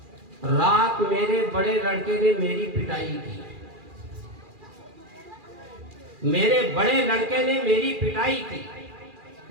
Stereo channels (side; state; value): left; late; 2.4 ms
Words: رات میرے بڑے لڑکے نے میری پٹائی کی، میرے بڑے لڑکے نے میری پٹائی کی،